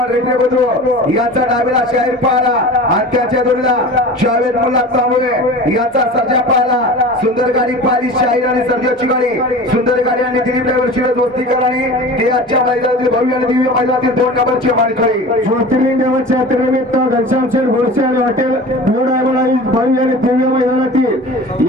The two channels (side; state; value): both; normal; correlation 0.36